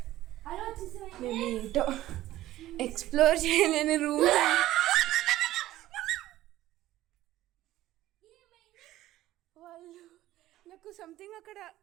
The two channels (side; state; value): left; quieter; 14.9 dB